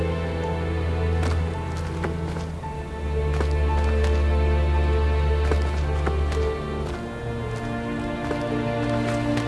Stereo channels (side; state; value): both; identical; correlation 1.00